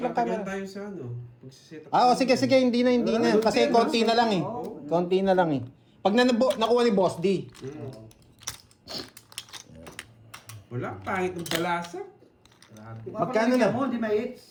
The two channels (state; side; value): identical; both; correlation 1.00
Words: Malatagal camera. tayo sa ano. Pagsiset up. Sige, hindi na. Kasi konti na lang eh. Oo. Konti na lang eh. Pag nakuha ni Boss D. Wala, pangit ng balasa. Kung ako Magkano nabigyan na? mo, hindi may hits.